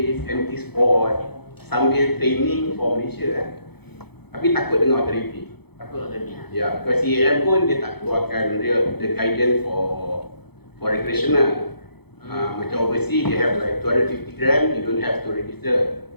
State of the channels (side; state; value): right; late; 0.98 ms